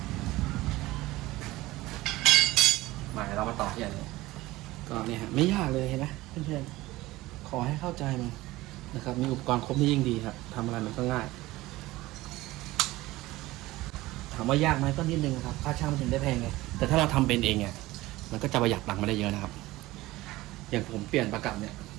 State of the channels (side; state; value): left; quieter; 18.4 dB